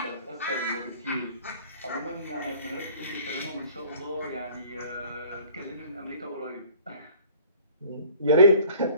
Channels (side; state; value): both; inverted; correlation -0.52